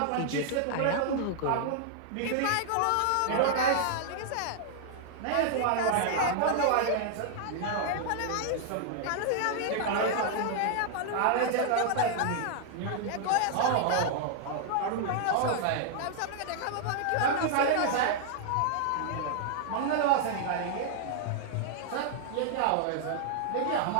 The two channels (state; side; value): different; both; correlation 0.00